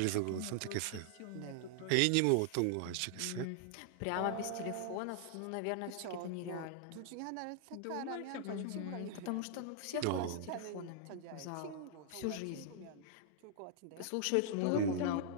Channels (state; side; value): different; both; correlation -0.01